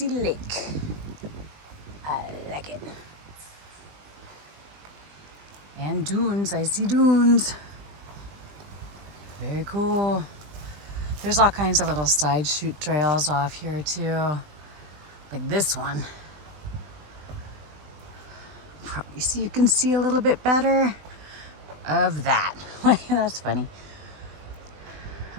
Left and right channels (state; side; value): late; left; 20 ms